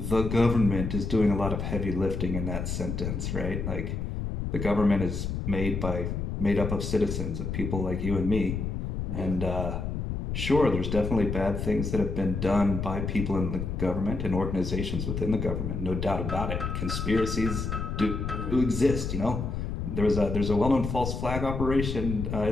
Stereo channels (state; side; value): noise; left; rumble, 3 dB below the sound